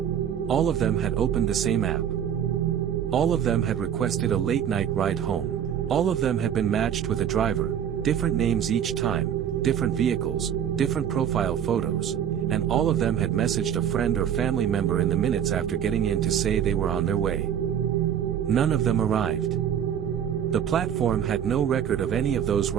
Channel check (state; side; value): quieter; left; 9.2 dB